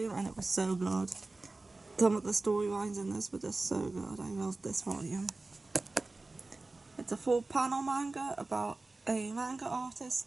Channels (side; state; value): left; quieter; 3.3 dB